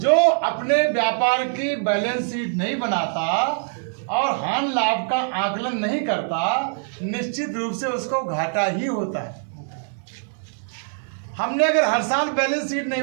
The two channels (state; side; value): silent; left; digital silence